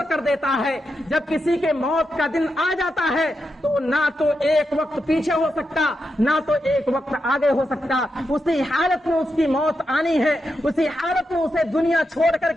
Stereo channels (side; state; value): both; normal; correlation 0.86